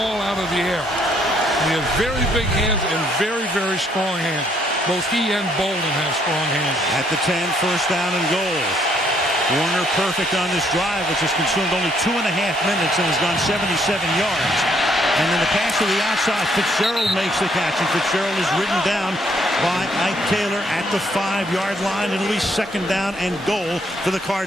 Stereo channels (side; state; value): both; normal; correlation 0.68